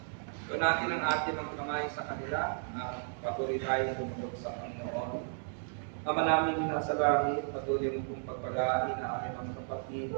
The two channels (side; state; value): left; silent; digital silence